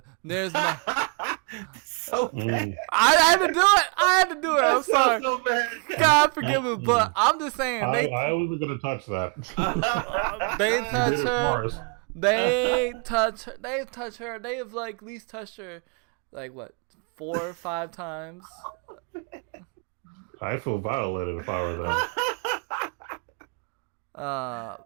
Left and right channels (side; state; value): left; quieter; 35.5 dB